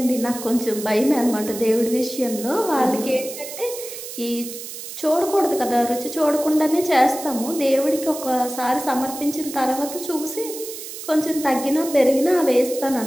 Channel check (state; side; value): noise; right; hiss, 10 dB below the sound